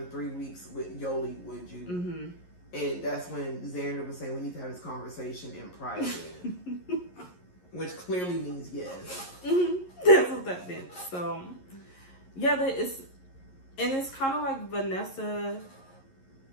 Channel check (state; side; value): late; right; 11 ms